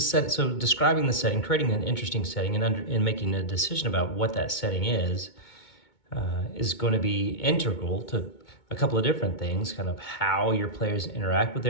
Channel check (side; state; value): right; late; 2.2 ms